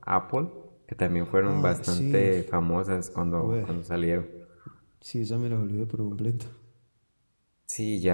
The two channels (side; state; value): both; inverted; correlation -1.00